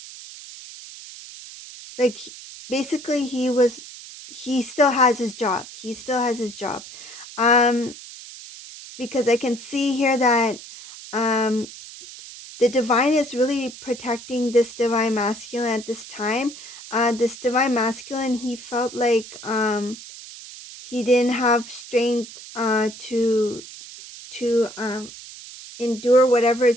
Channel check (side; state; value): right; noise; hiss, 15 dB below the sound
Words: like basically he still has his job. He still has his job. Um, because I can see here that um the divine is really protecting this divine masculine at this time. This divine masculine, he felt like he didn't have strength to endure whatever